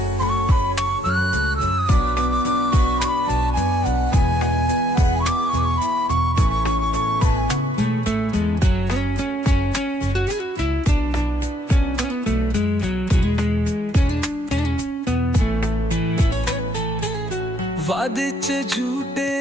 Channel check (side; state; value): both; normal; correlation 0.70